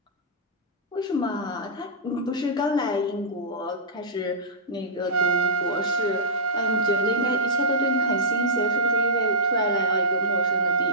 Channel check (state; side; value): normal; both; correlation -0.15